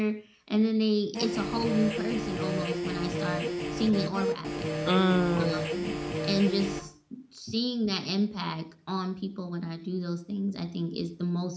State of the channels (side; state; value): both; identical; correlation 1.00